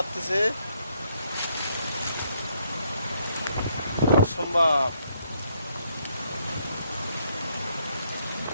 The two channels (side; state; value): both; inverted; correlation -0.73